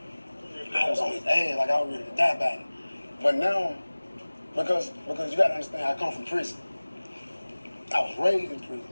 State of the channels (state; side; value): inverted; both; correlation -1.00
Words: I was on his ass, like I was ready to die about it. But now, because you gotta understand, I come from prison. I was raised in